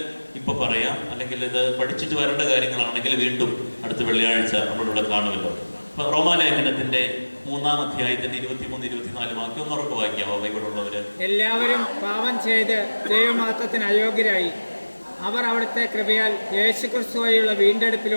ഇപ്പൊ പറയാം, അല്ലെങ്കിൽ ഇത് പഠിച്ചിട്ട് വരേണ്ട കാര്യങ്ങളാണെങ്കിൽ വീണ്ടും അടുത്ത വെള്ളിയാഴ്ച നമ്മളിവിടെ കാണുമല്ലോ. അപ്പൊ റോമാലേഖനത്തിന്റെ 3-ാം അധ്യായത്തിന്റെ 23-24 വാക്യം ഒന്ന് ഉറപ്പ് വായിക്കാമോ ബൈബിളുള്ളവര്? എല്ലാവരും പാപം ചെയ്ത് ദൈവമാത്രത്തിന് അയോഗ്യരായി അവർ അവിടുത്തെ കൃപയാൽ യേശുക്രിസ്തു വഴിയുള്ള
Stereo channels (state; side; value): inverted; both; correlation -1.00